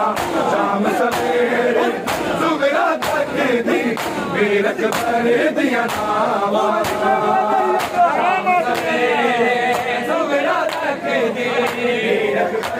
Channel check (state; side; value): identical; both; correlation 1.00